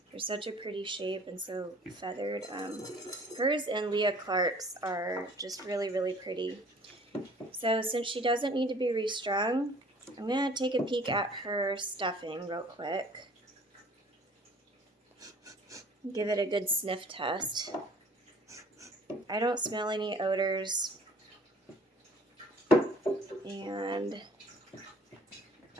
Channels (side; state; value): both; normal; correlation 0.52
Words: They're such a pretty shape and so feathered. Hers and Leah Clark's are just really, really pretty. So since she doesn't need to be restrung, I'm going to take a peek at her stuffing real quick. Give it a good sniff test. I don't smell any odors. And